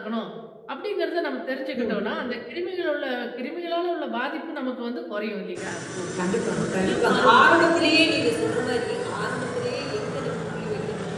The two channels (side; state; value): both; identical; correlation 1.00